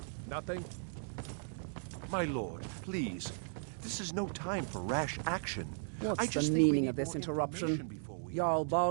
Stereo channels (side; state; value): left; silent; digital silence